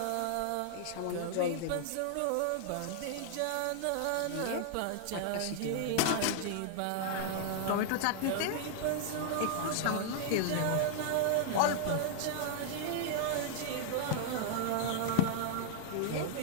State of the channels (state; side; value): different; both; correlation -0.01